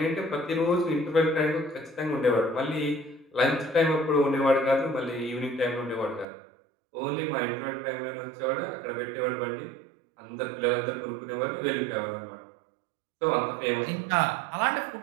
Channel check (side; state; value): left; drops out; at 6.2 s